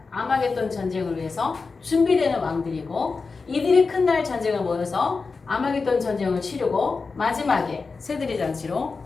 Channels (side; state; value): right; quieter; 4.4 dB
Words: 아마겟돈 전쟁을 위해서 준비되는 왕들이고 이들이 큰 날 전쟁을 모여서 아마겟돈 전쟁을 치르고 마지막에 새들의 잔치로